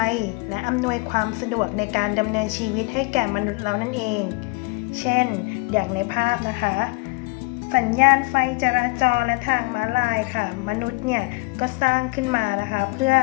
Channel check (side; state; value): right; quieter; 27.1 dB